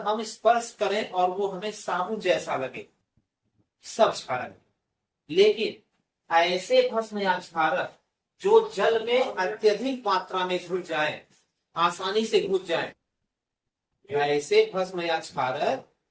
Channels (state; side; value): identical; both; correlation 1.00